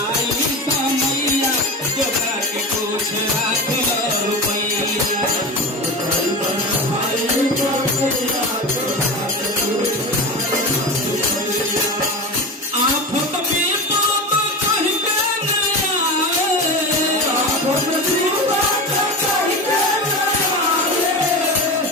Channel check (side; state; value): both; normal; correlation 0.25